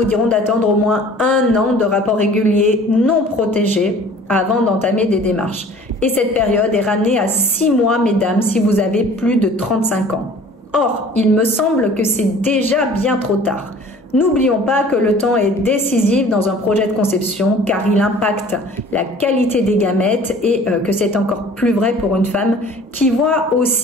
diront d'attendre au moins 1 an de rapports réguliers non protégés avant d'entamer des démarches. Et cette période est ramenée à 6 mois, mesdames, si vous avez plus de 35 ans. Or, il me semble que c'est déjà bien trop tard. N'oublions pas que le temps est décisif dans un projet de conception car il impacte la qualité des gamètes et que c'est encore plus vrai pour une femme qui voit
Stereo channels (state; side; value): normal; both; correlation 0.48